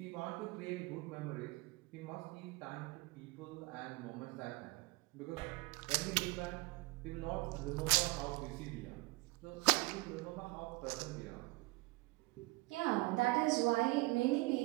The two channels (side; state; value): left; quieter; 23.8 dB